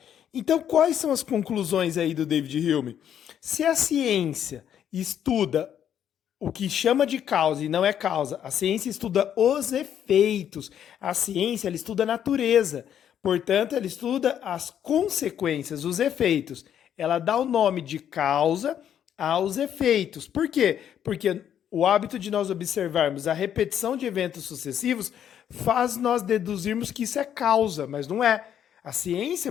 Então quais são as conclusões aí do David Hume? Se a ciência estuda o que chama de causa e não é causa, a ciência estuda os efeitos, a ciência ela estuda a natureza. Portanto, ela estuda as consequências, os efeitos. Ela dá o nome de causa aos efeitos. Por quê? Porque o hábito de nós observarmos a repetição de eventos sucessivos faz nós deduzirmos que isso é causa, mas não é. A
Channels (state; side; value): quieter; right; 9.6 dB